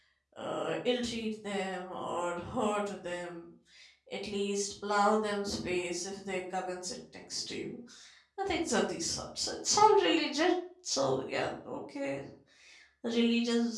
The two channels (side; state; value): both; identical; correlation 1.00